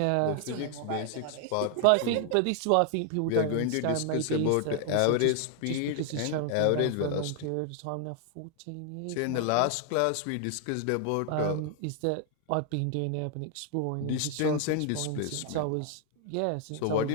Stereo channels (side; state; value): both; different; correlation 0.00